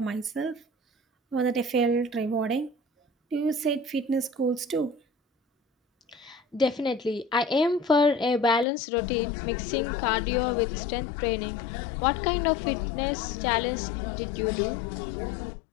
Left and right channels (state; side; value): drops out; right; at 8.7 s